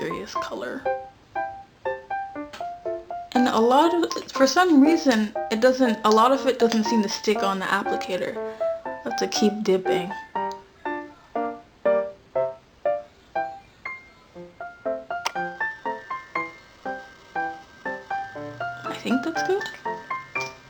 color. And for some reason, a lot of it doesn't seem to stick on the applicator. I have to keep dipping. I think that's good.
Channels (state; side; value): identical; both; correlation 1.00